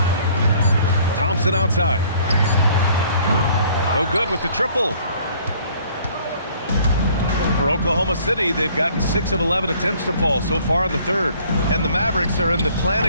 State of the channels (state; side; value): inverted; both; correlation -0.57